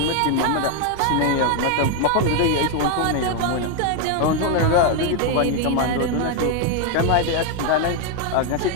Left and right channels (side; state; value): both; different; correlation 0.01